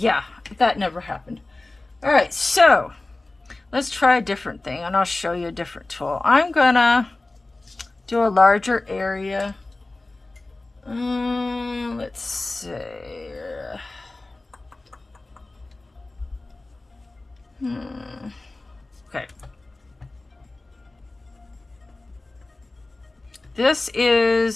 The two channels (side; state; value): right; quieter; 3.0 dB